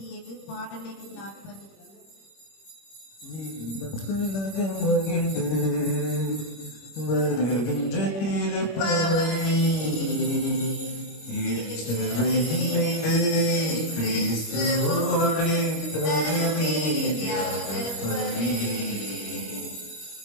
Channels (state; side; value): late; right; 25 ms